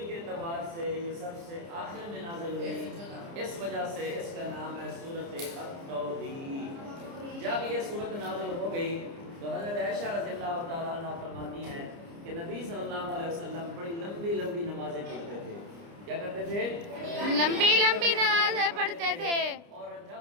کے اعتبار سے یہ سب سے آخر میں نازل ہوئی، اس وجہ سے اس کا نام ہے سورۃ التوضیح. جب یہ سورت نازل ہو گئی تو حضرت عائشہ رضی اللہ تعالیٰ عنہ فرماتی ہیں کہ نبی صلی اللہ علیہ وسلم بڑی لمبی لمبی نمازیں پڑھتے تھے. کیا کرتے تھے؟ لمبی لمبی نمازیں پڑھتے تھے. اور جب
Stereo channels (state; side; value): late; left; 29 ms